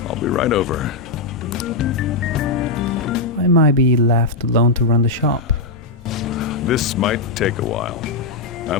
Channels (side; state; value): right; quieter; 3.7 dB